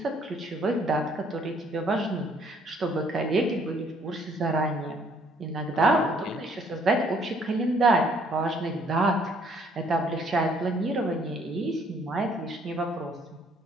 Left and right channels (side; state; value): both; normal; correlation 0.63